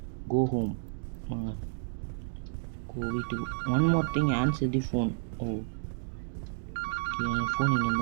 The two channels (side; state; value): left; silent; digital silence